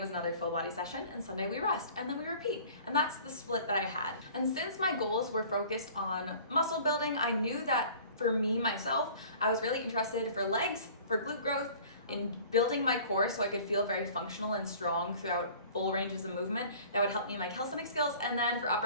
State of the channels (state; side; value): inverted; both; correlation -0.47